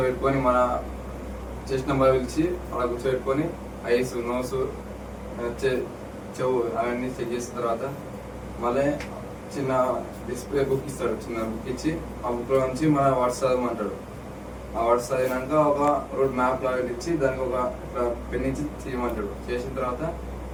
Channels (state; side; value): identical; both; correlation 1.00